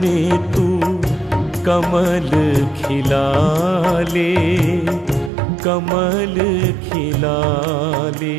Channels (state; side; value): drops out; left; at 5.3 s